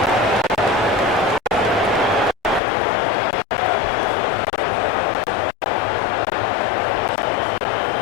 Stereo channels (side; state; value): right; drops out; at 2.6 s